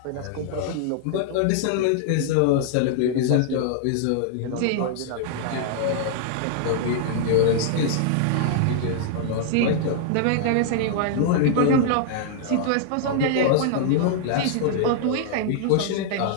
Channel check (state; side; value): different; both; correlation -0.01